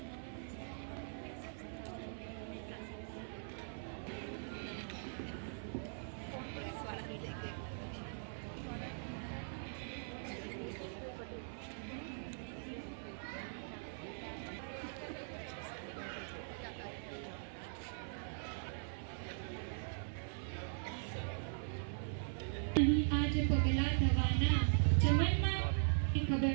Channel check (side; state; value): left; silent; 50 dB below the other